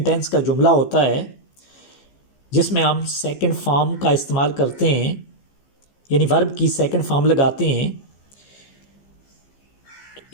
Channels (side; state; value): right; late; 15 ms